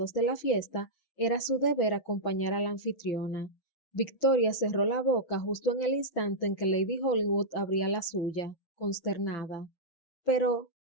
de la fiesta, era su deber acompañar a la anfitriona. Victoria cerró la boca justo en el instante en que Lady Hollywood abría la suya, consternada. Pero,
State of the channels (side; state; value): right; late; 5.9 ms